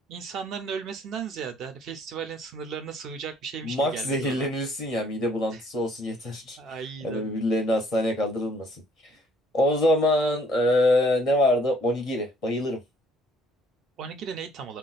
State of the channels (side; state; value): both; normal; correlation 0.61